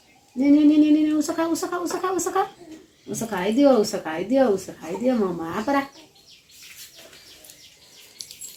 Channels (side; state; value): both; identical; correlation 1.00